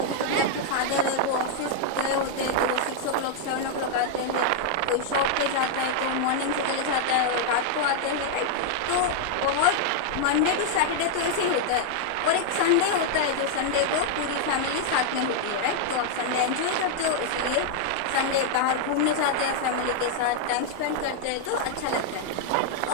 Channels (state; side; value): different; both; correlation -0.01